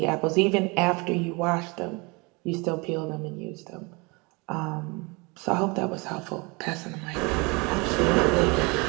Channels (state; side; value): quieter; left; 27.6 dB